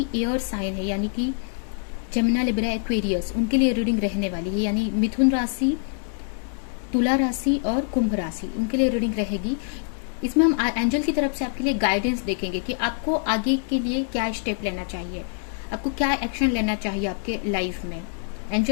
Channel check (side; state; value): right; silent; 62 dB below the other